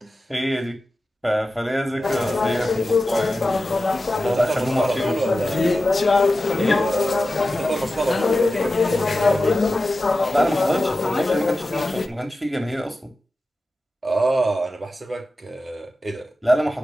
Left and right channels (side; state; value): both; normal; correlation 0.93